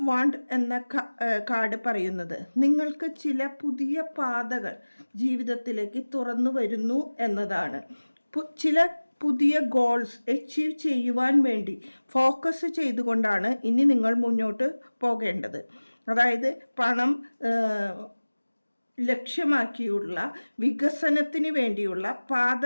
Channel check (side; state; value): both; inverted; correlation -1.00